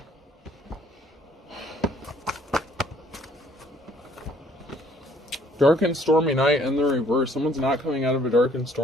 Dark and stormy night in the reverse. Someone's not coming out of a dark and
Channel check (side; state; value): both; normal; correlation 0.61